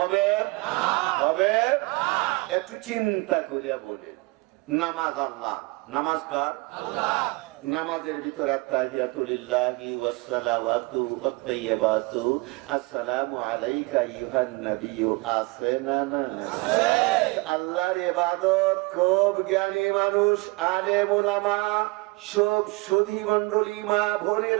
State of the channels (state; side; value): quieter; left; 25.3 dB